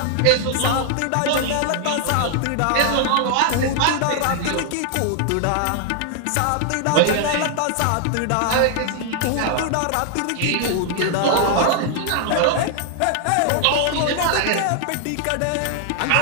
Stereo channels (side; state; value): both; different; correlation 0.00